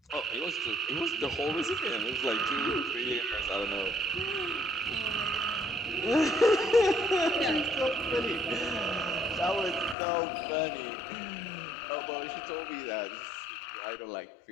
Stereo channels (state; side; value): drops out; right; at 10.0 s